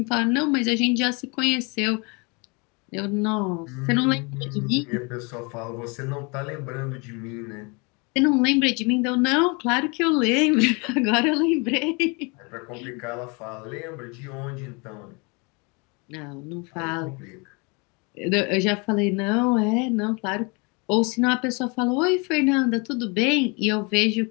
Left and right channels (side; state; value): right; quieter; 30.5 dB